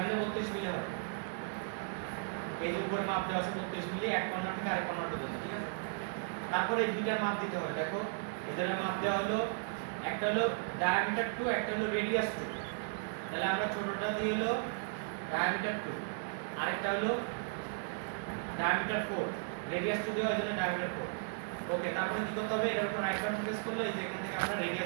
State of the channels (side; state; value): left; silent; digital silence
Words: 32 মিলি হয় এই যে উপরে মাপ দেওয়া আছে 32 মিলি এক কর্নার থেকে আরেক কর্নার পর্যন্ত ঠিক আছে তারপরে এই দুইটার মাপ দিতে হবে দেখো এদের মাপ দেওয়া হলো একটা হলো ডায়ামিটার 2 একটা হলো রেডিয়াস 2 তাহলে আমরা ছোটটা দিয়ে হলো ডায়ামিটার 2 আরেকটা হলো ডায়ামিটার 4 রেডিয়াস 2 দেওয়ার জন্য ডায়ামিটার 4 ওকে তারপরে কি করতে হবে এর উপর রাইট বাটন প্রেস করলে এই যে এখান থেকে আমরা